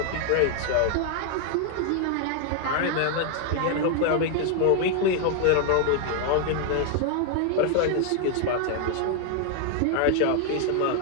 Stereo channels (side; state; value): both; different; correlation 0.00